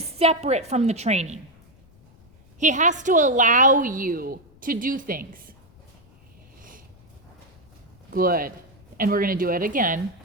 separate from the training. He has to allow you to do things. Good. And we're going to do it again.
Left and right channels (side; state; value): left; noise; rumble, 28 dB below the sound